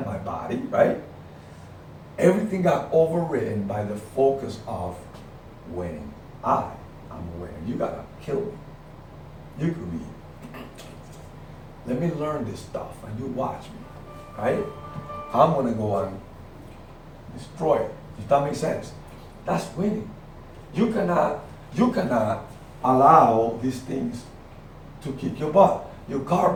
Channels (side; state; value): both; identical; correlation 1.00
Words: my body, right? Everything got overridden by the focus of winning. I'm a winner. You gotta kill me. You could be. Let me learn this stuff and you watch me, right? I'm gonna go and destroy it. Does that make sense? That's winning. You cannot allow these things to kick your butt. Your car